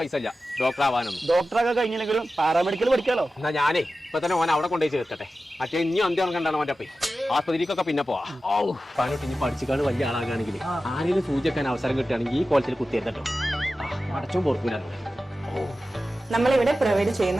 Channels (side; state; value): both; normal; correlation 0.94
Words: ഇല്ല ഡോക്ടർ ആവാനൊന്നും. ഡോക്ടറൊക്കെ കഴിഞ്ഞില്ലെങ്കിലും പാരാമെഡിക്കൽ പഠിക്കാലോ. എന്നാ ഞാനേ ഇപ്പൊ തന്നെ ഓൻ അവിടെ കൊണ്ടുപോയി ചേർക്കട്ടെ. മറ്റേ ഇനി അന്ത്യം കണ്ടാണ് അവന്റെ അപ്പേ ആസ്പത്രിക്കൊക്കെ പിന്നെ പോവാ. പണിട്ട് ഇനി പഠിച്ചിക്കാണ് വലിയ ആളാകാണെങ്കിൽ ആരെങ്കിലും സൂചിക്കാൻ അവസരം കിട്ടുകയാണെങ്കിൽ ഈ കോളേജിൽ കുത്തിയെത്തട്ടോ. അടച്ചും പൊറക്കൂല. നമ്മളിവിടെ പ്രൊവൈഡ്